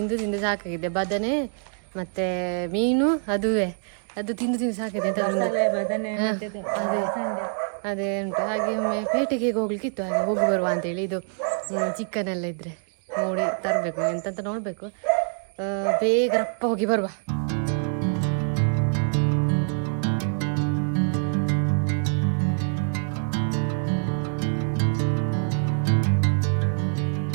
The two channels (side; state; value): left; silent; 62 dB below the other